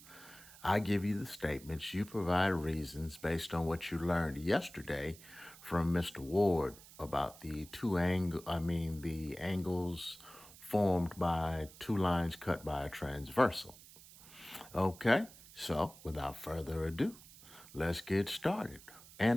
I give you the statements, you provide reasons based on what you learned yesterday from Mr. Ward about the the angles formed by two lines cut by a transversal. Okay, so without further ado, let's get started.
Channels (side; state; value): right; noise; hiss, 20 dB below the sound